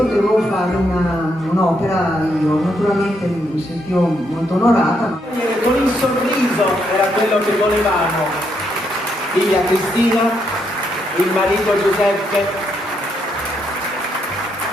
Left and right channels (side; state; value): both; normal; correlation 0.77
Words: fare un'opera io. Naturalmente mi sentivo molto onorata. Con il sorriso era quello che volevamo. Figlia Cristina, il marito Giuseppe,